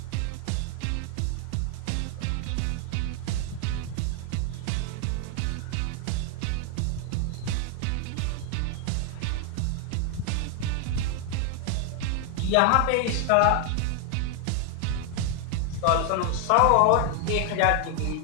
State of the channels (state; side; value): different; both; correlation 0.00